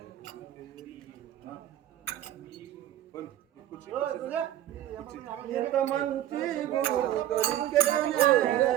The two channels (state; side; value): quieter; left; 12.4 dB